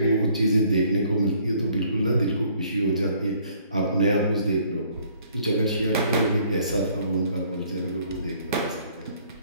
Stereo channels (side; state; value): both; inverted; correlation -0.61